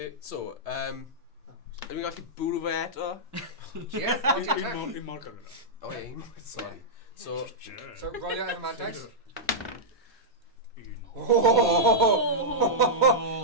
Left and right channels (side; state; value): both; normal; correlation -0.09